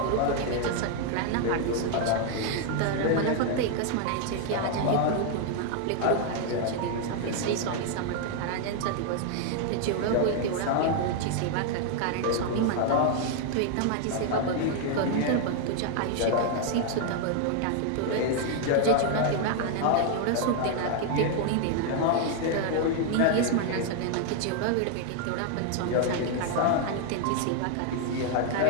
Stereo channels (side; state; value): both; different; correlation 0.00